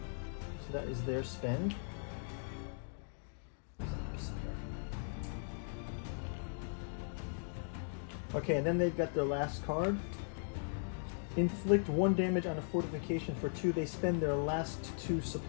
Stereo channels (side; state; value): right; silent; digital silence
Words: So that is their spend. Okay, and then they've got their last card. Inflict 1 damage on a fortification for 2. They spend their last 2